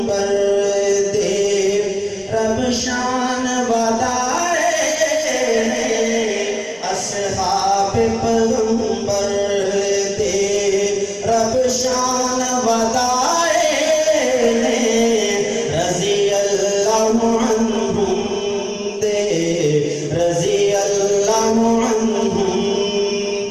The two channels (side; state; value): both; identical; correlation 1.00